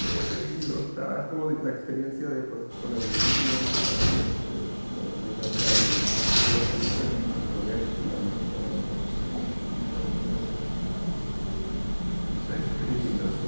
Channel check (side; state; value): both; inverted; correlation -1.00